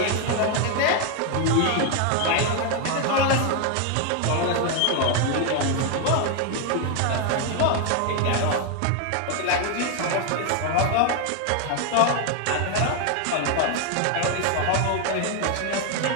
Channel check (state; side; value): different; both; correlation 0.01